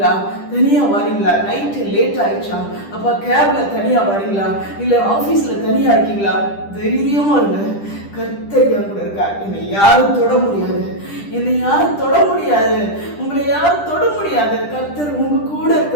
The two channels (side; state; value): right; late; 10 ms